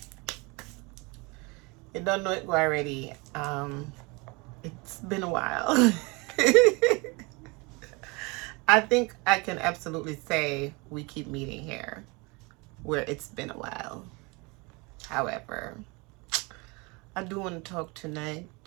you don't know it already. It's been a while. I think I can absolutely say we keep meeting here where it's been a while. However, I do want to talk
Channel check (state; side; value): quieter; left; 27.5 dB